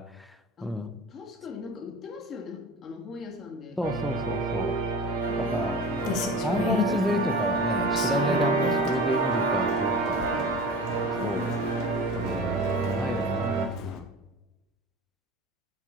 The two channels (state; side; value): normal; both; correlation 0.35